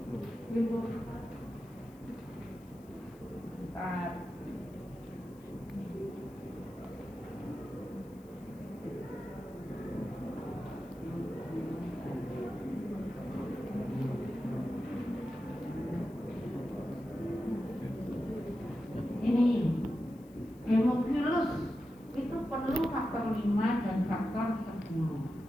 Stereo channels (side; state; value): left; noise; hiss, 28 dB below the sound